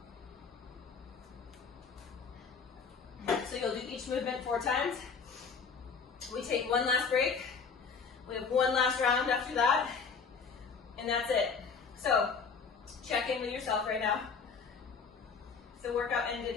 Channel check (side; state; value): right; quieter; 5.5 dB